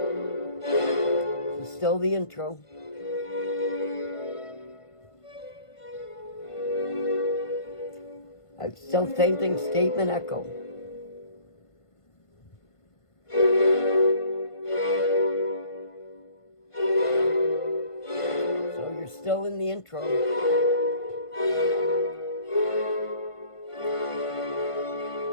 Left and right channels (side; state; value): right; late; 1.5 ms